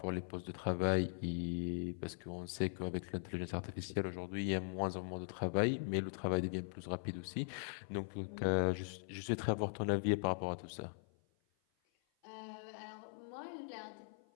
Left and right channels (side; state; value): right; silent; 51 dB below the other